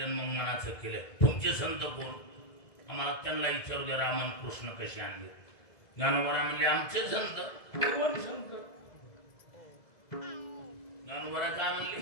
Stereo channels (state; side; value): late; right; 1.8 ms